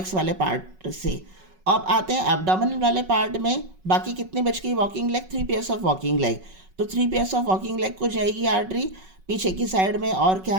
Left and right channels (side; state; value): left; late; 5.4 ms